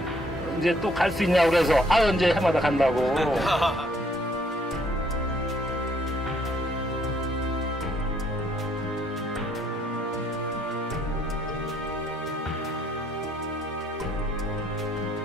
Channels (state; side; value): normal; both; correlation 0.66